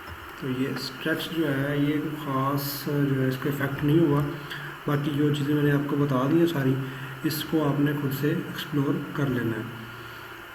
तो ये स्ट्रेच जो है ये ख़ास जो है इसका इफ़ेक्ट नहीं हुआ, बाकी जो चीज़ें मैंने आपको बता दी हैं सारी, इसको आपने खुद से एक्सप्लोर कर लेना है।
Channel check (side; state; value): both; identical; correlation 1.00